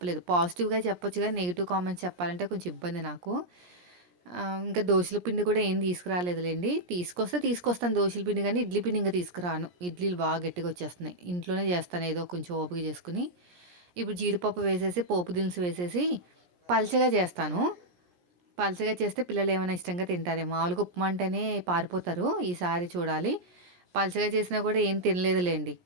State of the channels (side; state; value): left; late; 17 ms